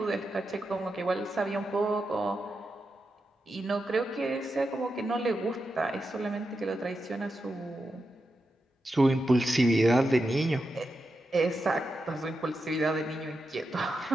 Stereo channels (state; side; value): normal; both; correlation 0.88